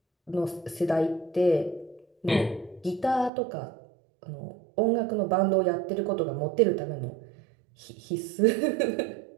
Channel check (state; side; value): drops out; left; at 3.3 s